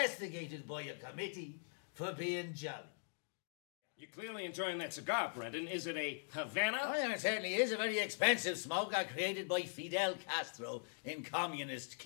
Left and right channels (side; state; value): right; silent; digital silence